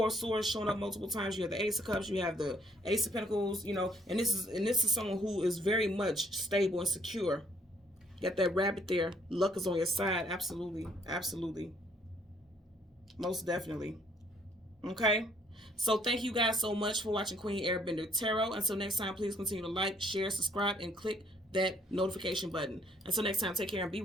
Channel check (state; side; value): normal; both; correlation 0.64